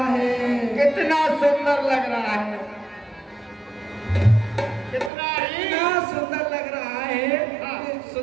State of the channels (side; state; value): left; drops out; at 5.1 s